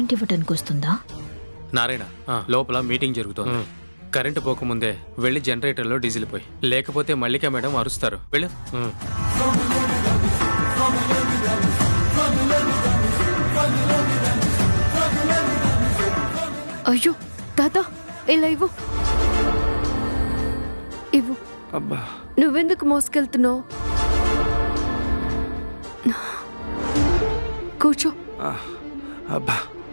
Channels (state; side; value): inverted; both; correlation -1.00